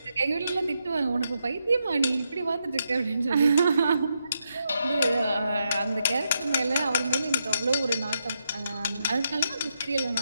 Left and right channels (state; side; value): inverted; both; correlation -0.82